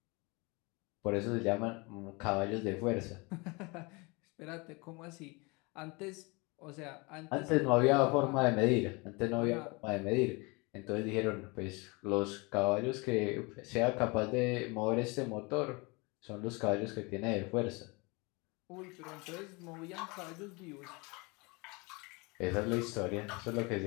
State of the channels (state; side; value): quieter; right; 27.4 dB